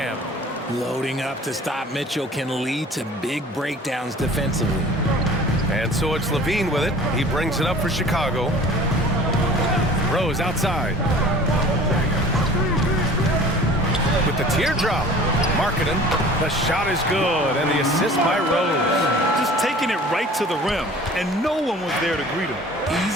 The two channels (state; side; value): normal; both; correlation 0.46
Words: Loading up to stop Mitchell can lead to big breakdowns defensively. And so it's Levine with it. He brings it up for Chicago. Rose outside. With the teardrop. Markkanen. The shot is good. And the assist by Rose. Just taking it right to the rim. And no one was there to greet him.